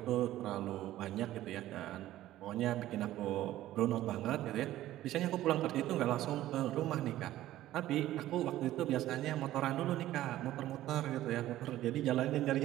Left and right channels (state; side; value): quieter; left; 14.4 dB